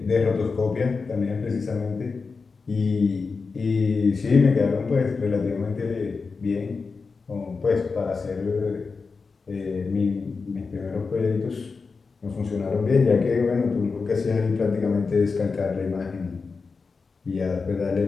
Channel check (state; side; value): quieter; right; 4.6 dB